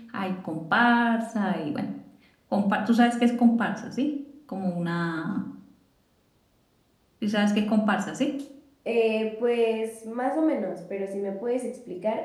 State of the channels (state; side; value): identical; both; correlation 1.00